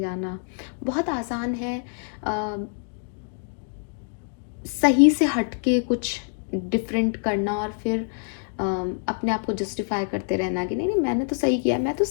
बहुत आसान है सही से हटके कुछ डिफरेंट करना, और फिर अपने आप को जस्टिफाई करते रहना कि नहीं नहीं मैंने तो सही किया, मैं तो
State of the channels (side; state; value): right; silent; 59 dB below the other